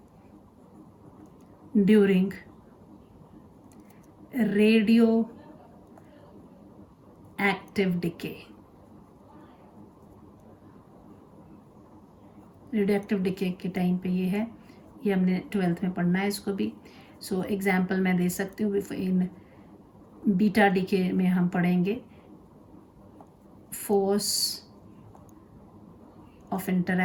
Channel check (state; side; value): identical; both; correlation 1.00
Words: during radioactive decay. Radioactive decay के टाइम पे ये है, ये हमने 12th में पढ़ना है इसको भी। सो एग्जाम्पल मैं दे सकती हूँ। इन बीटा डीके में हम पढ़ेंगे force of